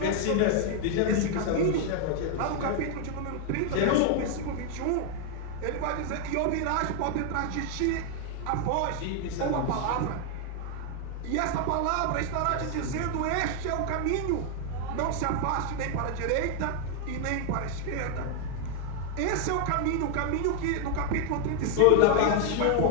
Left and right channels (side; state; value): both; different; correlation 0.00